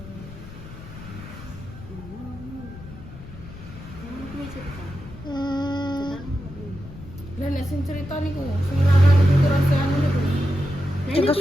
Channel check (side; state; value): left; noise; rumble, 15 dB below the sound